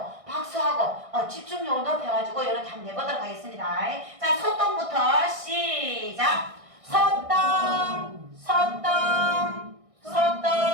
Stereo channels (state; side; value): late; left; 1.6 ms